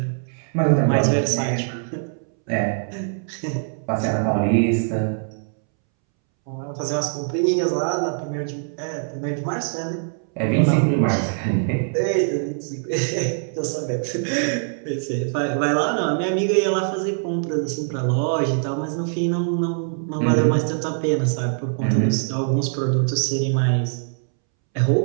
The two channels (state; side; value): silent; left; 64 dB below the other